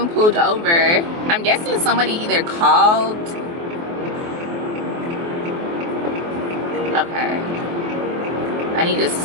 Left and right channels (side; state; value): left; late; 24 ms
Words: pulled over. I'm guessing somebody either called. Okay. I need to